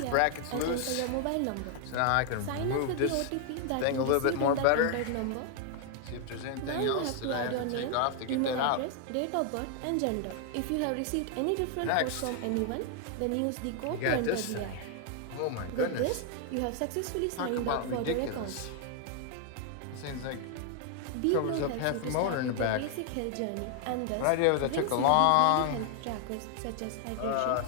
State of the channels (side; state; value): both; different; correlation 0.00